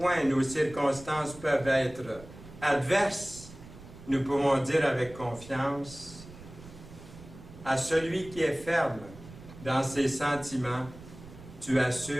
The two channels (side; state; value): right; noise; rumble, 17 dB below the sound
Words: nos circonstances peuvent être adverses, nous pouvons dire avec confiance à celui qui est ferme dans ses sentiments, tu